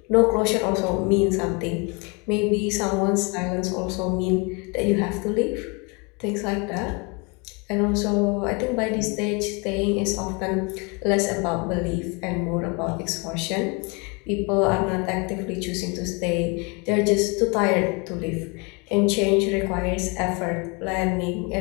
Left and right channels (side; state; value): right; quieter; 30.8 dB